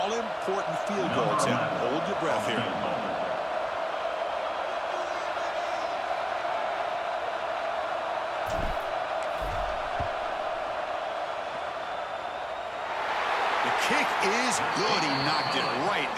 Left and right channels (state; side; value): identical; both; correlation 1.00